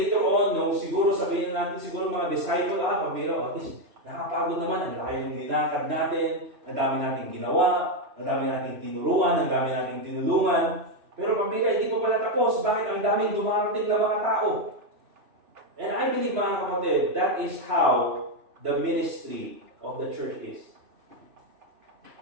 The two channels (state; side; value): late; left; 3.0 ms